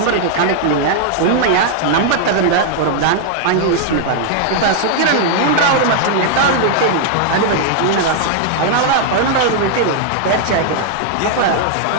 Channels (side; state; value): both; different; correlation 0.00